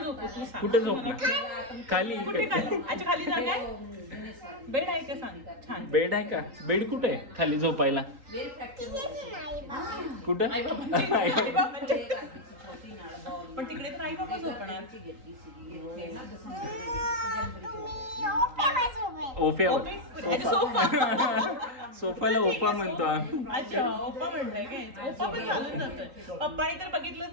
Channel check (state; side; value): late; left; 3.8 ms